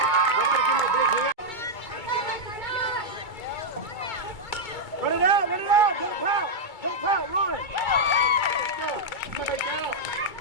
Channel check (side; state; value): right; late; 2.3 ms